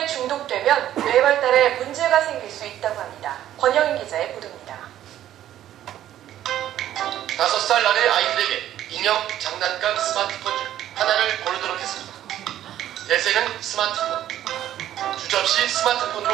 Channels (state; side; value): quieter; left; 12.2 dB